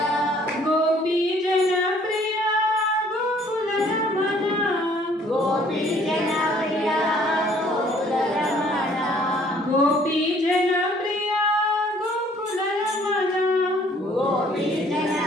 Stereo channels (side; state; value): both; normal; correlation 0.59